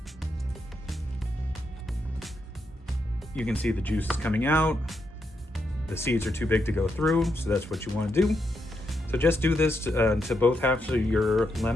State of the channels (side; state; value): both; normal; correlation 0.81